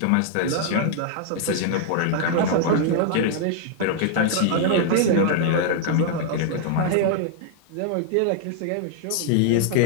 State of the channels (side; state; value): both; different; correlation 0.00